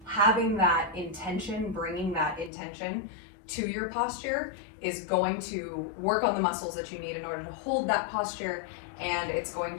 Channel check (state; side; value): drops out; right; at 2.5 s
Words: having that intention, bringing that intention to your posture is going to work on the muscles that you need in order to hold that posture, and it's going